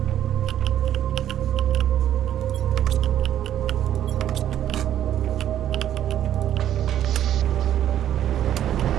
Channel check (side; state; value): left; quieter; 11.1 dB